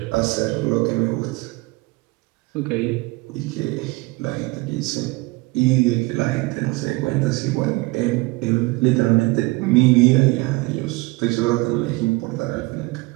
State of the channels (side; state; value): left; quieter; 23.3 dB